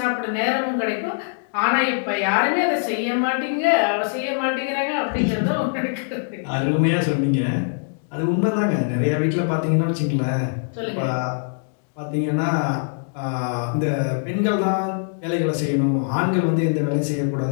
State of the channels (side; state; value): right; silent; digital silence